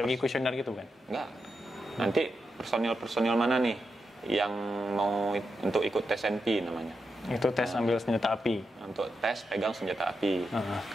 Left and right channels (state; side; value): normal; both; correlation 0.87